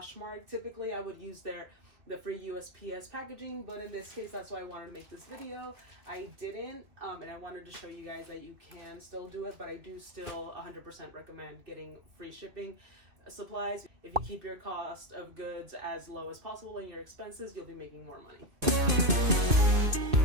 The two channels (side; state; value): left; late; 2.5 ms